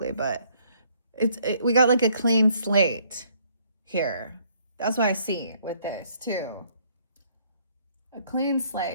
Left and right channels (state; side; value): inverted; both; correlation -0.65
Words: but we got like a clean slate here. That's what I see with this too. A clean